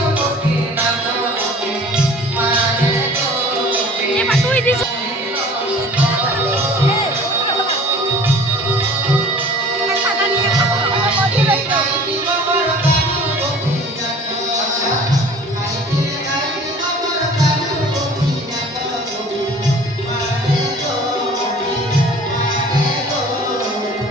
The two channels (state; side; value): normal; both; correlation 0.47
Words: গোপীনাথ মারে গো এ মা তুই দিছ